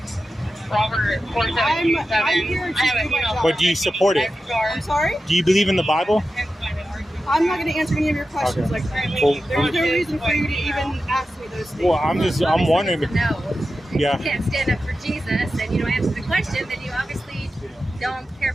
Robert, I'm here to do my job. But do you support it? I'm sorry? Do you believe in the Bible? I'm not going to answer any of your questions like that. Well, There's no reason for you to even ask me those things. Well, I'm wondering. No. Yeah. If you can't stand up for Jesus and you don't answer the question, then you obviously don't care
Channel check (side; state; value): both; normal; correlation 0.92